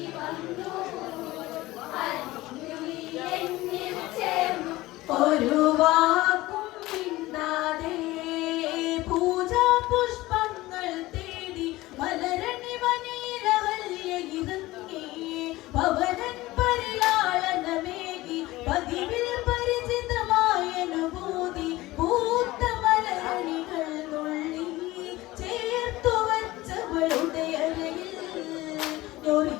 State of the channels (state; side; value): quieter; right; 18.5 dB